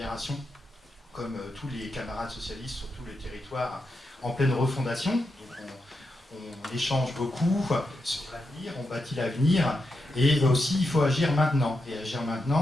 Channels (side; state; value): both; normal; correlation 0.86